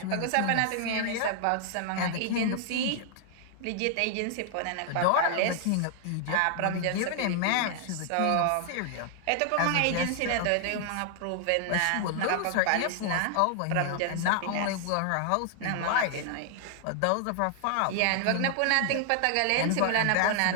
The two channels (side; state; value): both; different; correlation 0.00